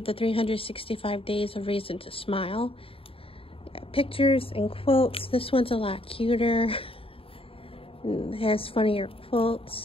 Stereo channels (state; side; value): late; right; 0.27 ms